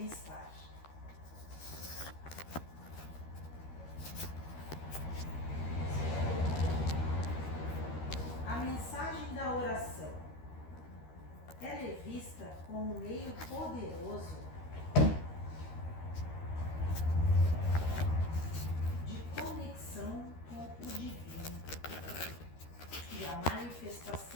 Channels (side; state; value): right; late; 13 ms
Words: A mensagem da oração, ela é vista como um meio poderoso de conexão com o divino e a